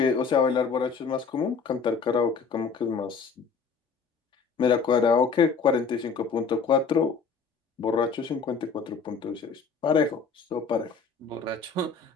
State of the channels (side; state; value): right; quieter; 5.4 dB